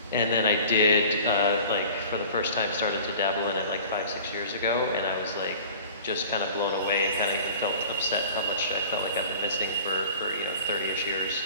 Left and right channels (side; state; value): both; inverted; correlation -0.43